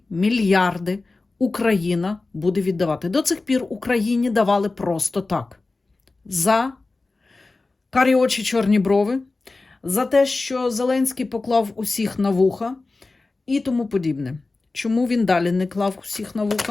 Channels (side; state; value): right; quieter; 3.5 dB